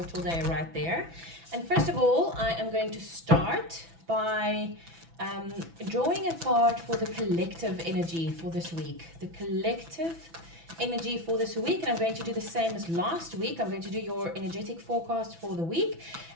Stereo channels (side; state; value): left; late; 6.0 ms